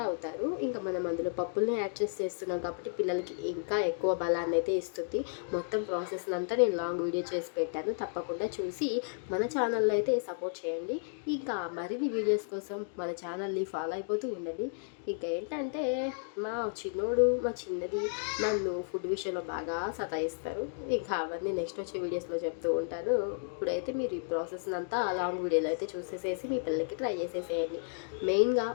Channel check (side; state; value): right; silent; digital silence